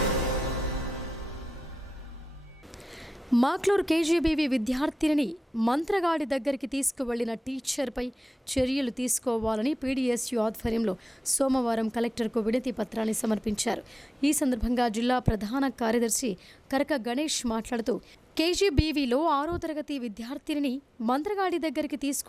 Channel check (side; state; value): both; normal; correlation 0.94